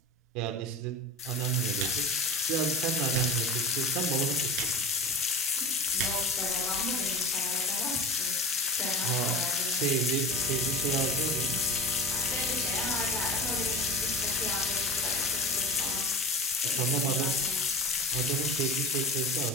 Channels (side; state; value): both; normal; correlation 0.31